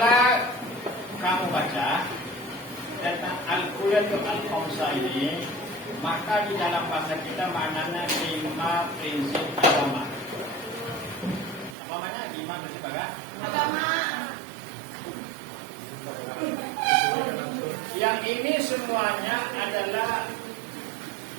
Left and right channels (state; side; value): drops out; left; at 11.8 s